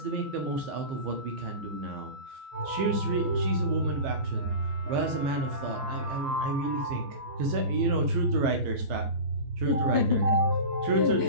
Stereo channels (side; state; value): left; late; 14 ms